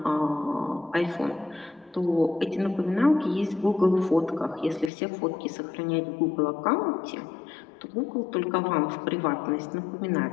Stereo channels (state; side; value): drops out; right; at 4.9 s